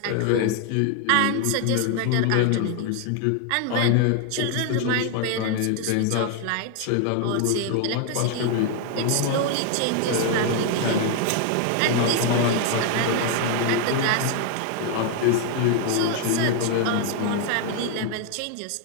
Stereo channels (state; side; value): different; both; correlation 0.00